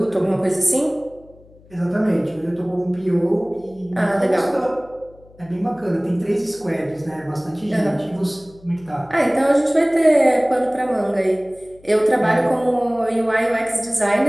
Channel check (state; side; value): noise; left; hum, 26 dB below the sound